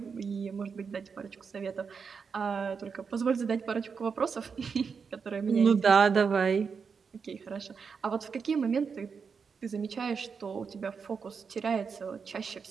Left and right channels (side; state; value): left; quieter; 5.8 dB